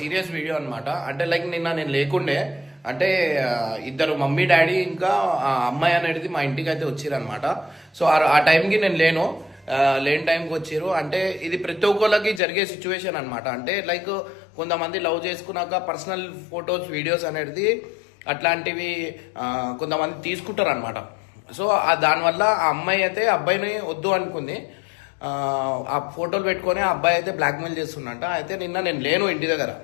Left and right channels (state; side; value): drops out; right; at 12.4 s